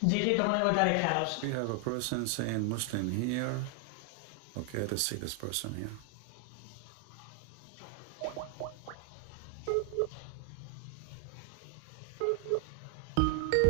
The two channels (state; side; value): different; both; correlation 0.00